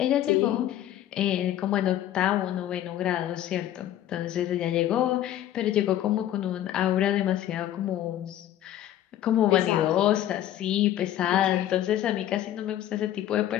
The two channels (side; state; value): right; quieter; 12.3 dB